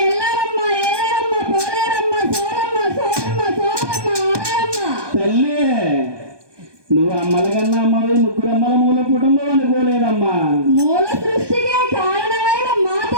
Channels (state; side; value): late; left; 1.2 ms